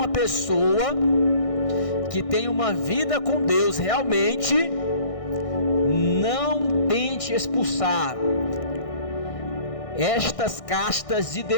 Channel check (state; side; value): late; right; 1.6 ms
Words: pessoa que tem uma vida com Deus realmente, não tente expulsar estas castas de